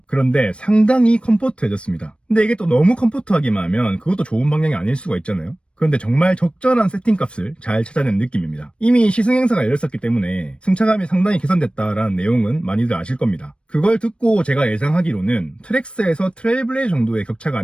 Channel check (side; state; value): right; late; 0.058 ms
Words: 그런데 상당히 컴포트해졌습니다. 근데 이게 또 너무 컴포트하기만 하면 그것도 좋은 방향이 아닐 수가 있잖아요. 그런데 정말 적절한 세팅값을 잘 찾아낸 느낌입니다. 이미 시승 행사가 열렸었기 때문에 승차감이 상당히 개선됐다라는 내용은 많이들 아실 겁니다. 그걸 듣고 제가 예상하기로는 트랙스에서 트레일블레이저 정도의 격차가